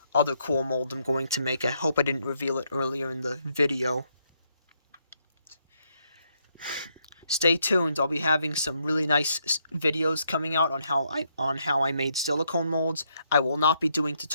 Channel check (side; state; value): both; inverted; correlation -0.76